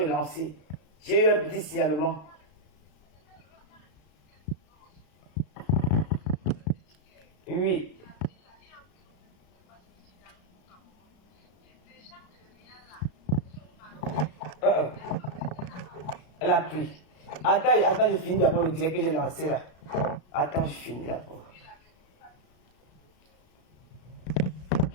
J'ai eu un petit signalement. Oui. Elle a pris. Attends, attends, je finis d'abord le direct que j'ai lancé là. Attends, je finis d'abord.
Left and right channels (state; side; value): late; right; 33 ms